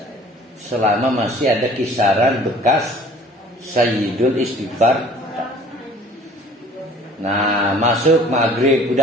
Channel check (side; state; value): both; normal; correlation 0.51